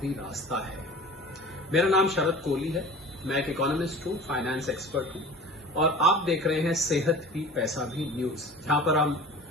रास्ता है। मेरा नाम शरद कोहली है, मैं एक इकोनॉमिस्ट हूं, फाइनेंस एक्सपर्ट हूं और आप देख रहे हैं सेहत भी पैसा भी न्यूज, जहां पर हम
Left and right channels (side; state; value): both; normal; correlation 0.40